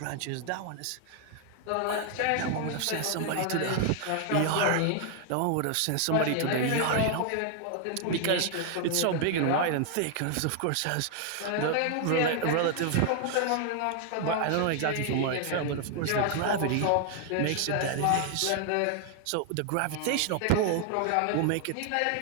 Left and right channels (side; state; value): both; different; correlation 0.00